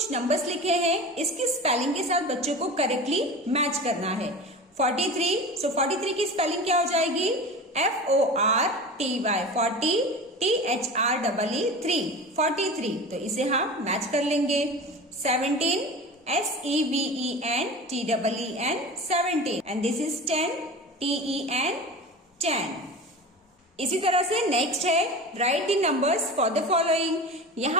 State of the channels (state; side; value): normal; both; correlation 0.33